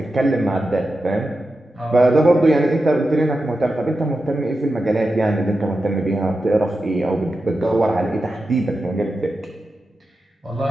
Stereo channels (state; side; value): normal; both; correlation 0.90